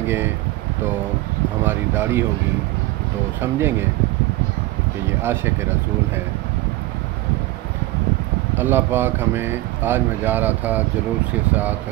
तो हमारी दाढ़ी होगी तो समझेंगे कि ये आशिक़ रसूल है। अल्लाह पाक हमें, आज मैं जा रहा था जुलूस के साथ,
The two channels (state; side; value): quieter; left; 18.2 dB